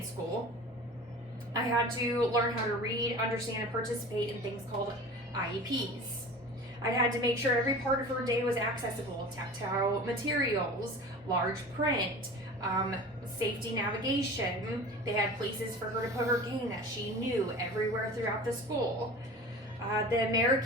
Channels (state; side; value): normal; both; correlation 0.38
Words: school, I had to learn how to read, understand, and participate in things called IEPs. I had to make sure every part of her day was accessible, tactile materials, large print, safety navigation. They had places for her to put her cane that she knew everywhere throughout the school. The